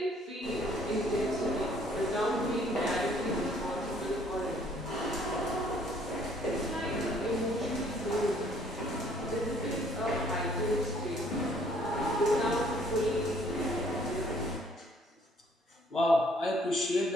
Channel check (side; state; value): both; normal; correlation 0.61